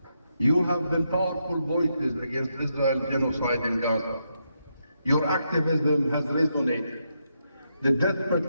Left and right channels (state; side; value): inverted; both; correlation -0.81